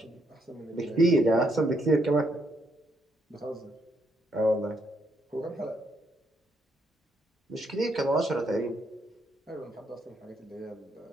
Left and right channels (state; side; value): normal; both; correlation 0.74